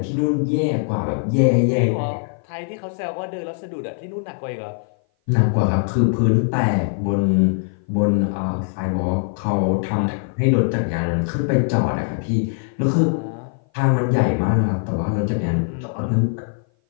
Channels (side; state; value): right; silent; 57 dB below the other